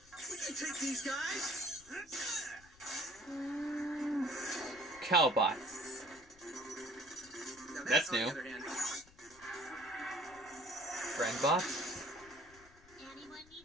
We can take these guys. Cowbot. Now That's on the new. other hand, Friendbot? Anyone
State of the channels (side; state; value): left; noise; rumble, 25 dB below the sound